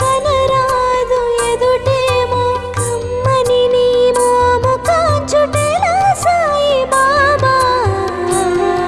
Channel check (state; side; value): identical; both; correlation 1.00